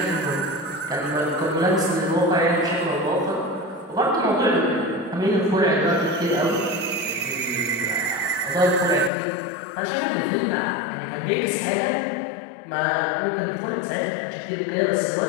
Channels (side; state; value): right; drops out; at 9.1 s